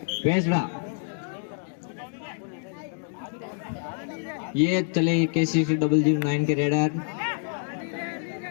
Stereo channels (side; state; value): right; silent; digital silence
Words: भेंसरा। ये चले KCC009 के रेडर।